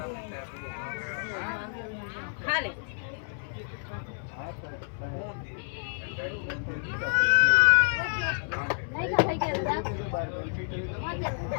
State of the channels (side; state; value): right; silent; 58 dB below the other